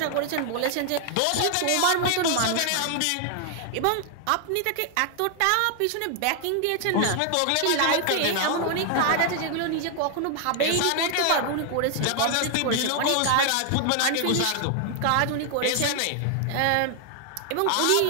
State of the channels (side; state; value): both; different; correlation 0.00